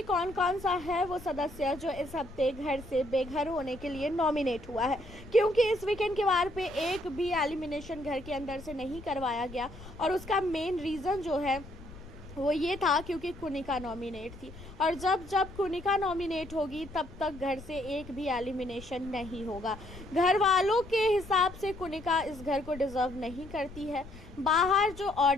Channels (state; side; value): noise; left; rumble, 16 dB below the sound